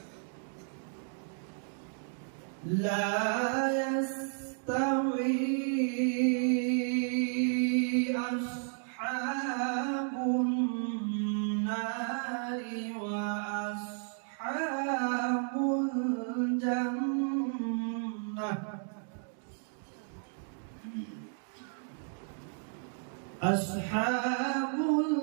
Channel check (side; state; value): left; silent; 56 dB below the other